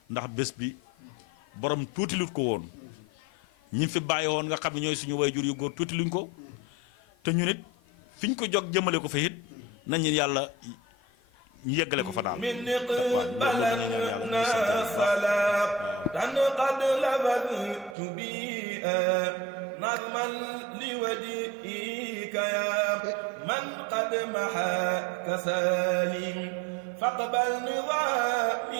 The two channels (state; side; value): drops out; left; at 17.9 s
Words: ndax bés bi borom tuuti lut ko woon ñi fi bàyyi woon nga xam ne ñooy suñu waajur yu góor tuuti luñ ko te ñu nit fi ñu ko jog jëmale ko fa it nañ yàlla ñu yeggale ko fa daal min balanna salatan qad labadtu bi nazman li wajhika ya man qad maha kasalim faqbal